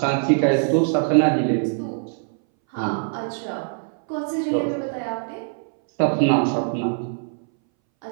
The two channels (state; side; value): silent; left; 62 dB below the other